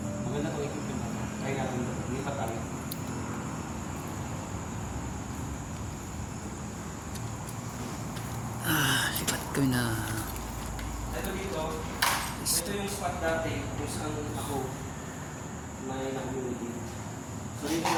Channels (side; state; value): both; identical; correlation 1.00